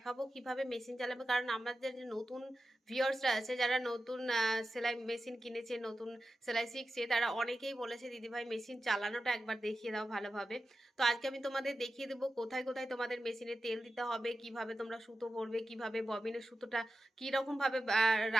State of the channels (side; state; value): both; normal; correlation 0.92